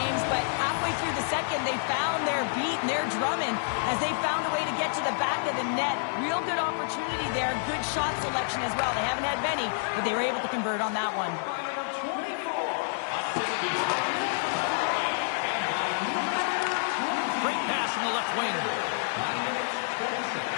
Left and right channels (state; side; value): silent; right; 59 dB below the other